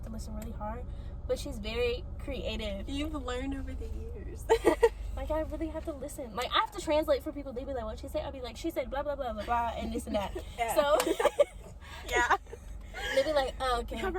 to listen really hard. But she's very creative. You've learned over the years. Like, I really have to listen. Like, I have to translate for people. They be like, what she say? I'll be like, she said blah, blah, blah, blah, blah, and this and that. Yeah. So, yeah. they be like, oh, okay. We have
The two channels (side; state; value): both; identical; correlation 1.00